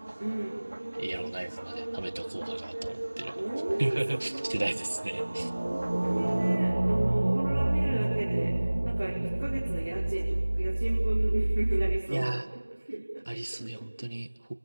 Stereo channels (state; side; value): inverted; both; correlation -1.00